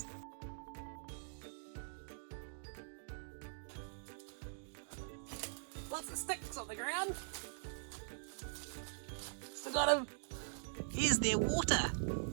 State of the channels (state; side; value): silent; left; digital silence